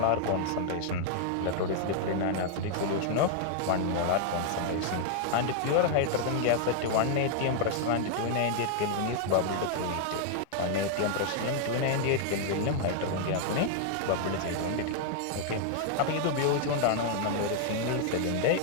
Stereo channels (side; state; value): both; different; correlation 0.00